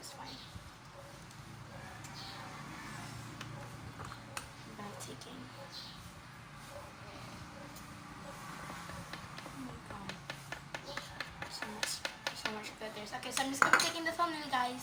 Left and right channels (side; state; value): both; identical; correlation 1.00